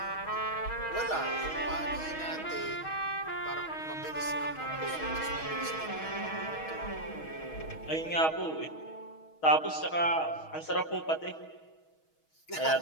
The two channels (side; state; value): right; late; 6.3 ms